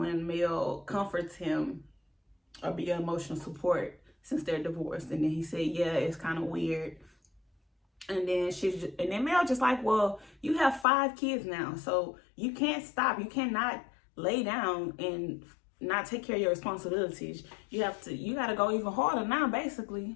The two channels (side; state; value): right; drops out; at 10.9 s